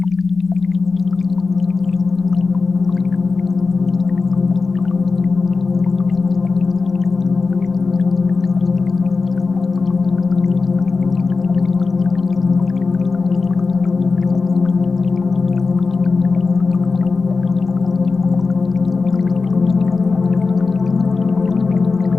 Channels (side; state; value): right; quieter; 4.3 dB